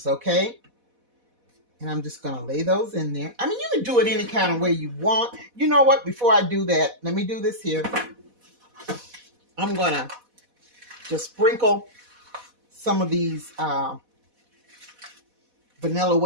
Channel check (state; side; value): late; left; 4.1 ms